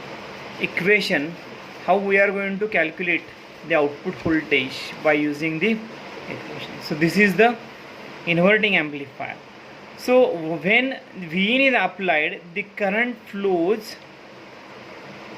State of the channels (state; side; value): identical; both; correlation 1.00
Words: equation, how we are going to calculate the output voltage by using the equation. So this is the inverting amplifier. So when Vin is applied, the current flows